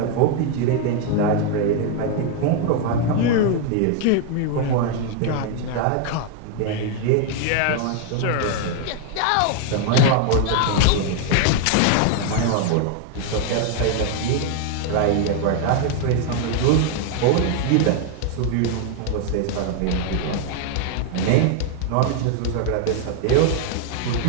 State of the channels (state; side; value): different; both; correlation 0.00